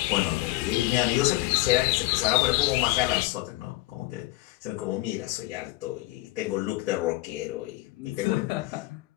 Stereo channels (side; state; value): right; quieter; 19.2 dB